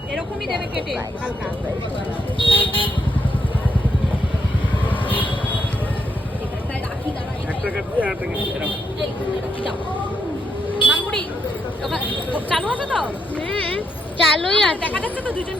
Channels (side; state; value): both; normal; correlation 0.79